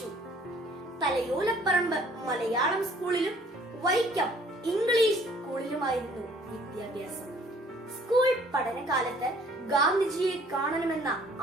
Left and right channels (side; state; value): both; normal; correlation 0.57